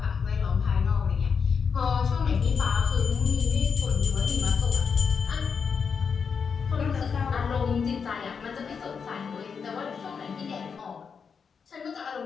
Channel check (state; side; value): quieter; right; 6.1 dB